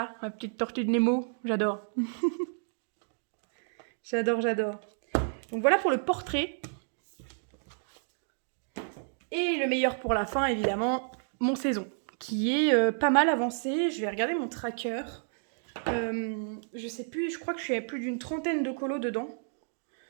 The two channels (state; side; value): silent; left; digital silence